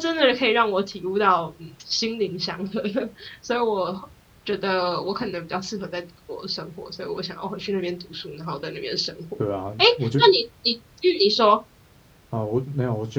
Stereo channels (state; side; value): identical; both; correlation 1.00